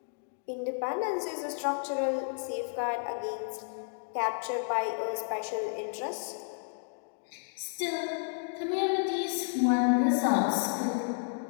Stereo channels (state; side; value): silent; right; 57 dB below the other